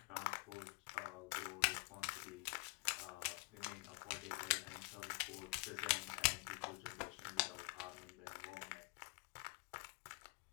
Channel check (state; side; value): quieter; right; 25.2 dB